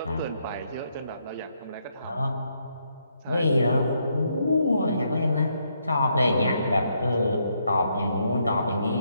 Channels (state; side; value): inverted; both; correlation -0.76